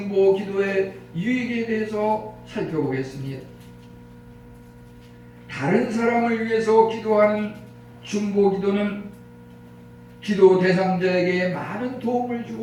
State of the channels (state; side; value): identical; both; correlation 1.00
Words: 기도의 유익에 대해서 살펴보겠습니다. 다른 사람을 위해서 기도하는 중보 기도는 기도 대상자에게 많은 도움을